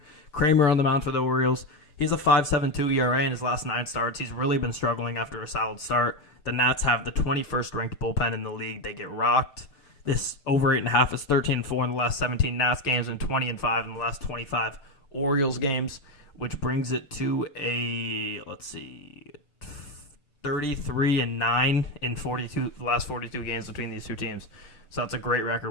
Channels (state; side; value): late; right; 6.8 ms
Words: Kramer on the mound for the Orioles. He's a 5.72 ERA in his last 9 starts. He's really been struggling after a solid start. The Nats have the 21st ranked bullpen in the league. They get rocked. This over 8.5 is 13-4 in the last 17 Nats games and 20-5 in the last 25 Orioles games, which brings it to a 33-9 in the last 42 games between these two teams. So that's a great record.